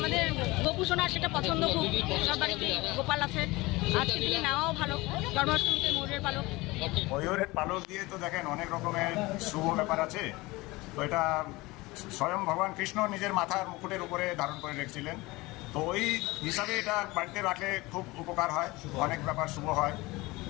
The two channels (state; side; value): quieter; right; 21.7 dB